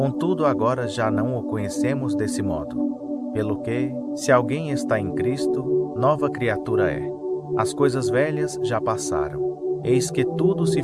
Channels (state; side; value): identical; both; correlation 1.00